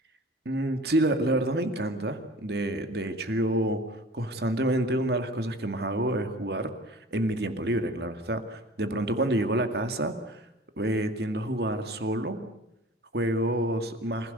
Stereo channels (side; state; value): both; normal; correlation 0.43